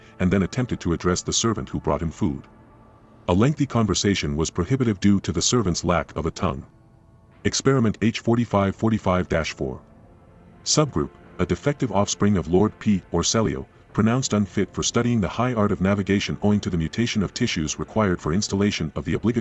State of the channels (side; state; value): both; identical; correlation 1.00